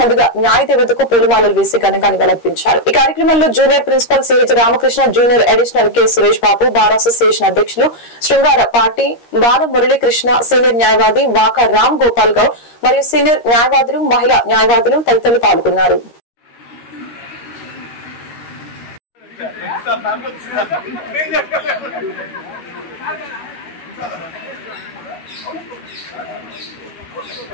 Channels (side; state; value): right; late; 13 ms